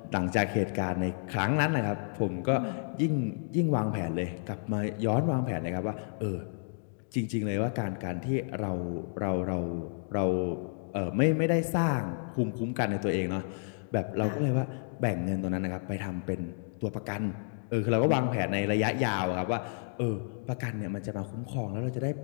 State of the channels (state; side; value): silent; right; digital silence